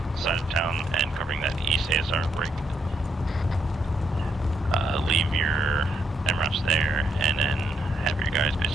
side of town and covering that east ASR break. Leave your MRAPs there, and then have your guys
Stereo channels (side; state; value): both; normal; correlation 0.76